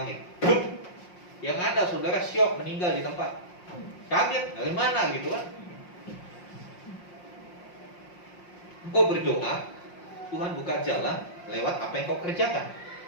Yang ada saudara syok meninggal di tempat. Kaget, dari mana gitu kan? Engkau berdoa, Tuhan buka jalan lewat apa yang kau kerjakan.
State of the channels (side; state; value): right; late; 5.6 ms